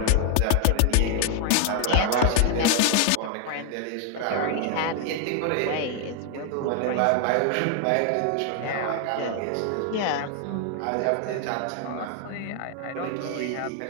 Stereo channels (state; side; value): different; both; correlation 0.00